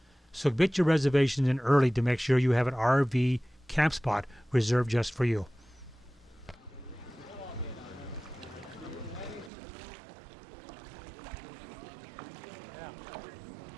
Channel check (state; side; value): drops out; left; at 9.5 s